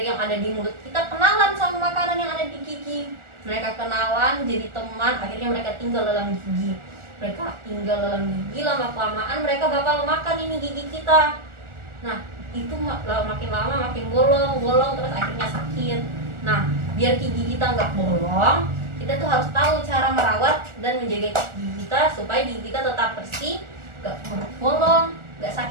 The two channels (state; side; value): late; left; 1.4 ms